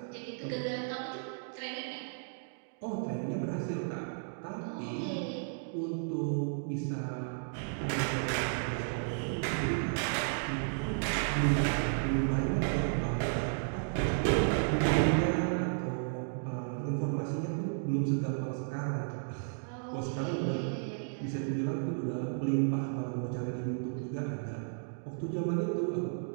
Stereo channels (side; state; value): left; silent; digital silence